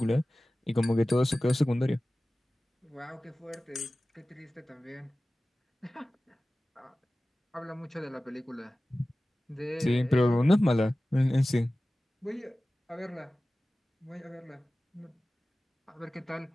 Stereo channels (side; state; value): both; normal; correlation 0.96